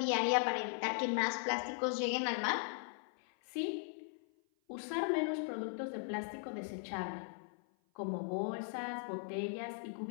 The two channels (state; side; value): silent; right; 52 dB below the other